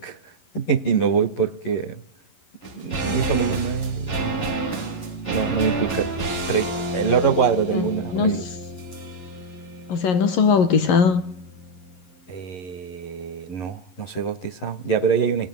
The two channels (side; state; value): right; late; 11 ms